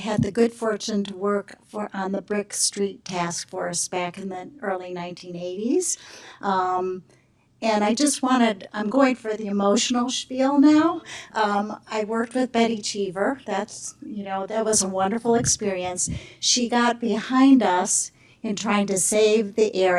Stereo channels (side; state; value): both; identical; correlation 1.00